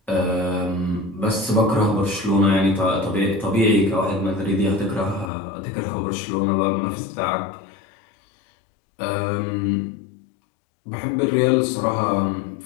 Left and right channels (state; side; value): drops out; right; at 5.3 s